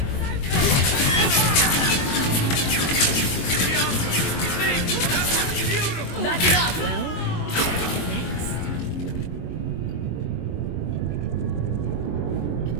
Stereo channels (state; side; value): late; right; 22 ms